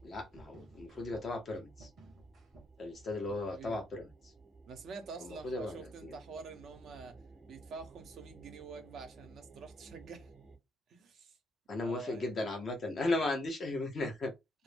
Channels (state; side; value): normal; both; correlation 0.75